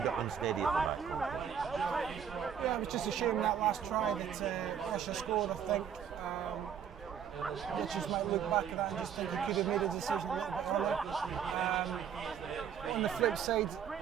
unsteady at the back. Yeah, it was just a shame that last try that Russia scored. I think I just might look back at that and just think he could have made a decision a little bit earlier. On the flip side,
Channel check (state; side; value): quieter; left; 8.2 dB